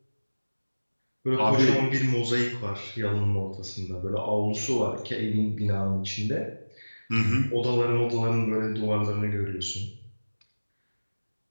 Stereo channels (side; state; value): both; inverted; correlation -1.00